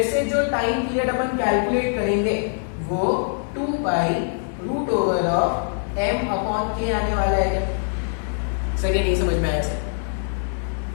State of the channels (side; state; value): right; silent; 58 dB below the other